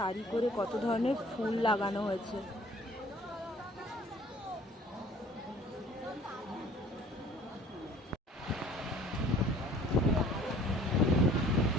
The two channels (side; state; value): both; normal; correlation 0.52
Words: করে কত ধরনের ফুল লাগানো হয়েছে।